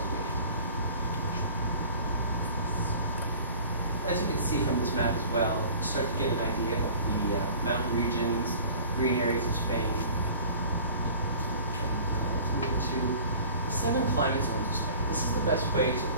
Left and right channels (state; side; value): inverted; both; correlation -0.45